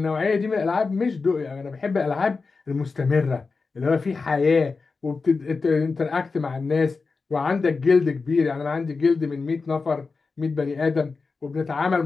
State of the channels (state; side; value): quieter; right; 4.4 dB